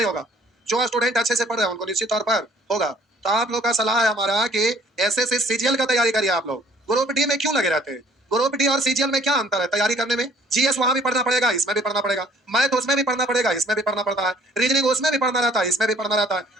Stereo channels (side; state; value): both; normal; correlation 0.58